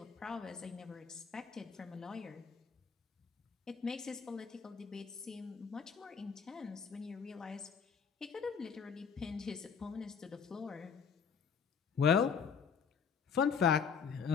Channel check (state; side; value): quieter; right; 6.4 dB